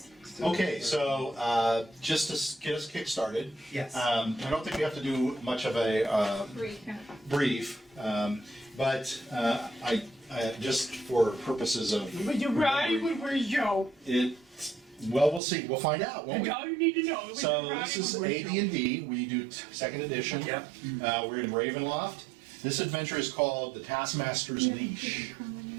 Okay, so just to get us kick-started, Yes. I don't think we have to do much of a brief, but I just for purposes of But you're right, where's Joe? it. Well, we'll see. We'll find out, won't That's we? all you need to know. So this is AD&D. We do second edition. Yep. We're in Ravenloft. This adventure is called the Taskmaster's Leash.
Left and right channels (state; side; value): drops out; left; at 15.4 s